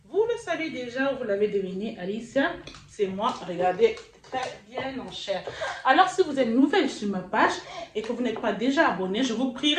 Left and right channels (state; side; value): identical; both; correlation 1.00